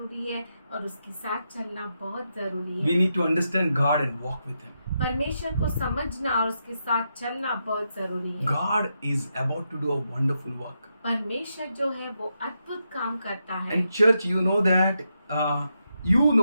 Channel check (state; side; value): inverted; both; correlation -0.84